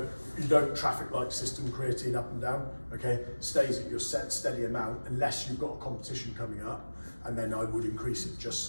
you don't traffic light system creatine up and down. Okay, stays at your set steady amount unless you've got a competition coming up, and then I would increase it just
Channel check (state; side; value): inverted; both; correlation -1.00